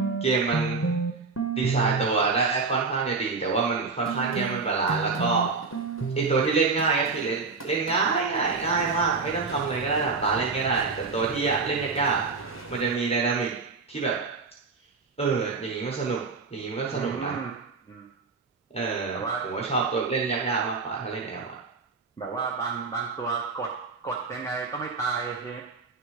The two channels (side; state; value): left; quieter; 4.4 dB